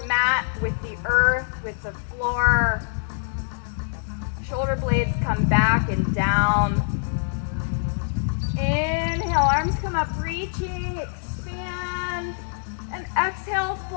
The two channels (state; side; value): silent; right; digital silence